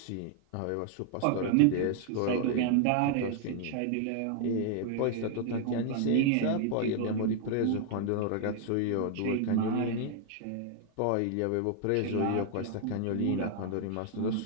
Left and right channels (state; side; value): different; both; correlation 0.00